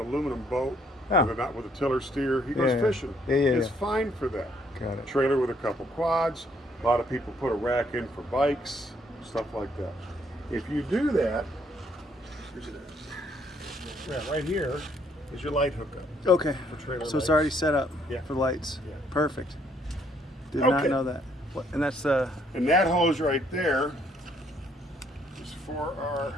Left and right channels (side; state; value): both; normal; correlation 0.68